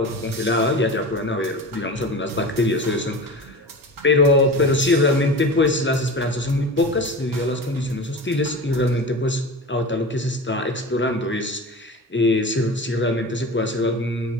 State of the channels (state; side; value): normal; both; correlation 0.31